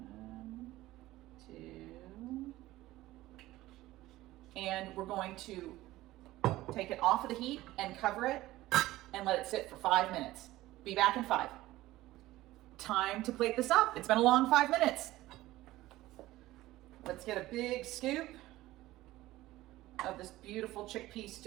1, 2. And we're going to take it off of the heat and cover it and let it sit for 5 minutes. Be back in 5. Time to plate this up. It's been a long 5 minutes. Let's get a big scoop of this beautiful chickpea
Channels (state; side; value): quieter; left; 16.8 dB